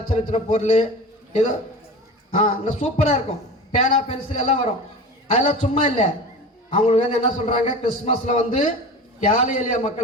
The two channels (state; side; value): normal; both; correlation 0.33